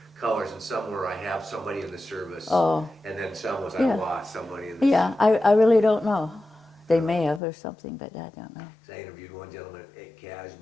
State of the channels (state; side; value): drops out; right; at 7.4 s